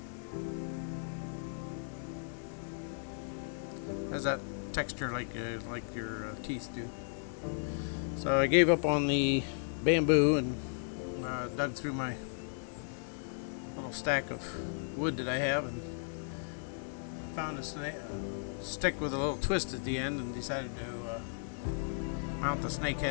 Has that texture like your teeth do. So I gave up on the bamboo and dug through my little stack of wood that I have and found a stick with a little twist at the end and decided to mount the snake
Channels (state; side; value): silent; right; 54 dB below the other